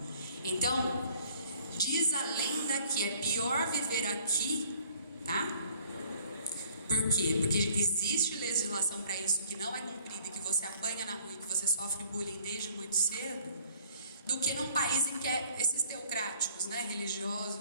Então, diz a lenda que é pior viver aqui, tá? Por quê? Porque existe legislação para isso que não é cumprida, que você apanha na rua e que você sofre bullying desde muito cedo, do que num país em que é esses teocráticos, né,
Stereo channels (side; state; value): both; inverted; correlation -0.58